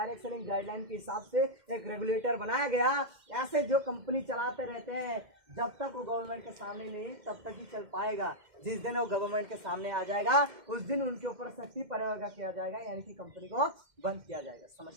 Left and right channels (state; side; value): late; left; 2.1 ms